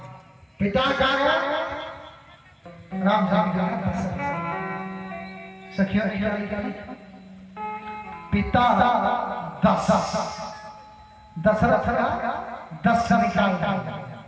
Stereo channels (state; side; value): identical; both; correlation 1.00